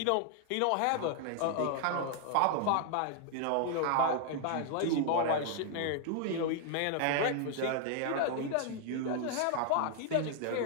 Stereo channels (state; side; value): different; both; correlation 0.00